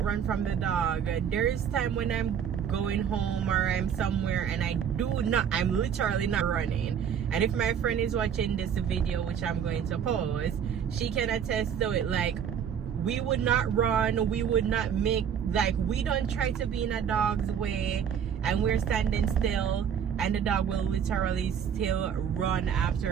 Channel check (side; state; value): left; quieter; 8.2 dB